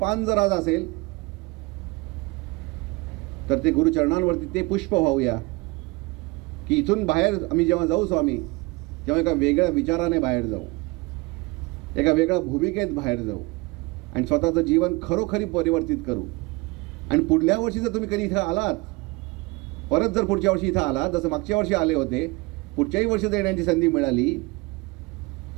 जर आज असेल तर ते गुरुचरणांवरती ते पुष्प वाहूया, की इथून बाहेर आम्ही जेव्हा जाऊ स्वामी, तेव्हा एका वेगळ्या विचाराने बाहेर जाऊ, एका वेगळ्या भूमिकेत बाहेर जाऊ आणि स्वतःचं जीवन खरोखरी परिवर्तित करू. आणि पुढल्या वर्षी जर तुम्ही कधी इथं आलात, परत जर पुढच्या वर्षी इथं आलात, जसं मागच्या वर्षी आले होते, पुढच्याही वर्षी जर येण्याची संधी मिळाली,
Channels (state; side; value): quieter; left; 24.7 dB